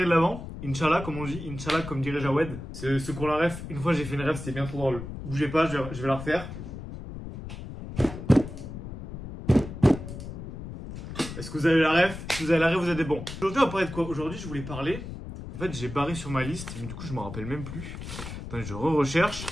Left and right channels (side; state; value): left; noise; rumble, 10 dB below the sound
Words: de l'Avent. Inch'Allah comme on dit, Inch'Allah comme dirait Jawed. C'est ce qu'on la ref. Une fois j'ai fait une ref, c'était bien trop drôle. Bougez pas, je vais la refaire. Est-ce que vous avez la ref? Si vous avez la ref, vous êtes des bons. Aujourd'hui on va parler de quoi? Aujourd'hui je voulais parler. En fait j'ai barré sur ma liste, mais du coup je me rappelle même plus. Attendez, je recherche.